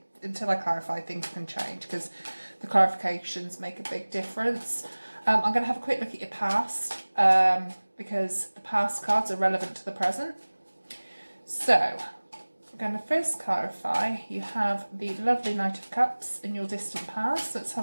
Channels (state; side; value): inverted; both; correlation -1.00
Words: until I clarify, things can change because the clarifications make a big difference. I'm going to have a quick look at your past because the past cards are relevant to the present. So, I'm going to first clarify, you have the lovely Knight of Cups in your distant past. Let's